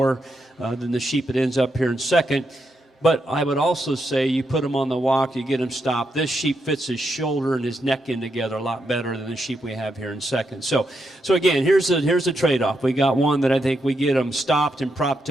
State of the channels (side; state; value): both; normal; correlation 0.82